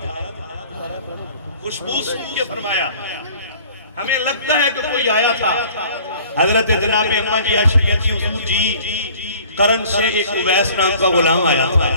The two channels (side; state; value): both; inverted; correlation -0.50